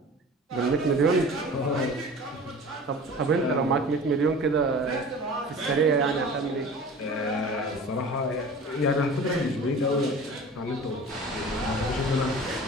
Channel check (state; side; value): normal; both; correlation 0.40